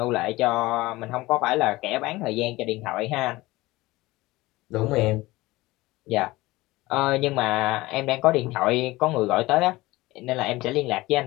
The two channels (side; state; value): right; quieter; 19.7 dB